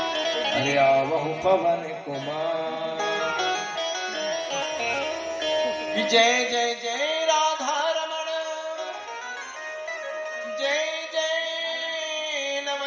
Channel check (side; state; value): both; identical; correlation 1.00